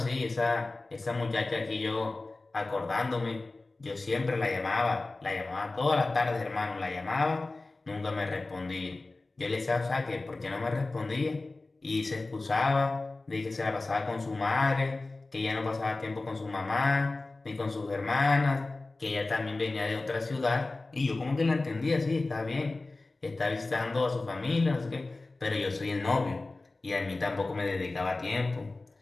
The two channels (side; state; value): right; quieter; 3.2 dB